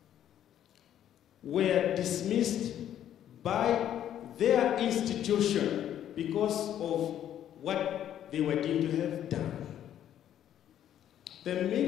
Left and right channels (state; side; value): quieter; right; 10.8 dB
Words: were dismissed by their institution because of what they were deemed to have done. The